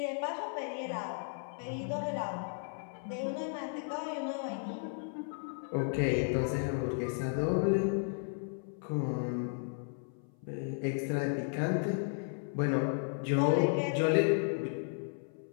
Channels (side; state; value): right; silent; 55 dB below the other